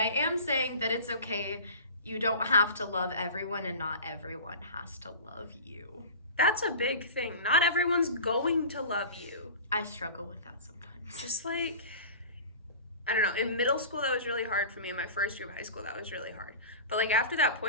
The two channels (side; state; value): both; inverted; correlation -0.36